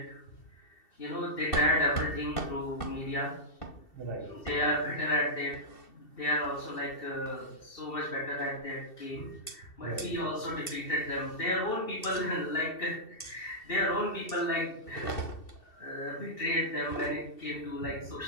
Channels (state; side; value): late; right; 2.7 ms